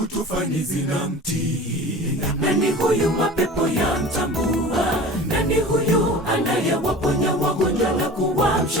tufani zinamtii? Nani huyu mapepo yamtambua? Nani huyu anayewaponya wagonjwa na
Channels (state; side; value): normal; both; correlation 0.38